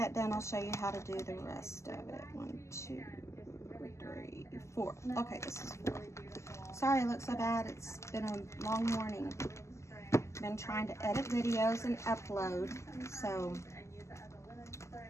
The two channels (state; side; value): late; right; 0.13 ms